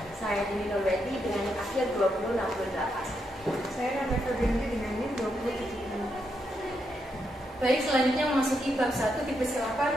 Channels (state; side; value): normal; both; correlation 0.81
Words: Saya Dini Nurweti dengan NIM akhir 2068. Saya Nanda Febrianti dengan NIM 2070. Baik, selanjutnya memasuki bab 1, dipersilakan